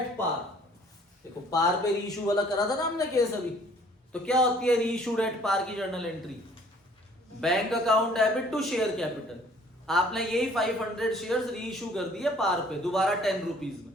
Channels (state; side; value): normal; both; correlation 0.56